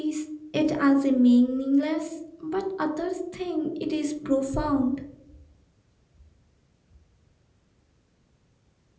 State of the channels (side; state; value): both; identical; correlation 1.00